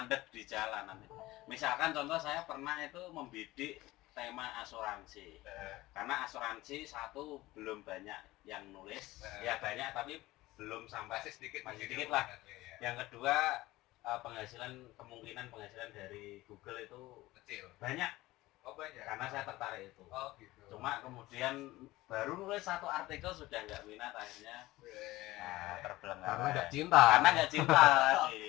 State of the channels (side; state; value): right; quieter; 18.3 dB